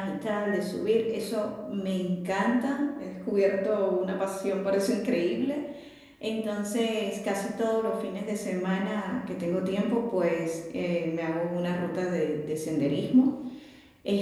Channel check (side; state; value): both; identical; correlation 1.00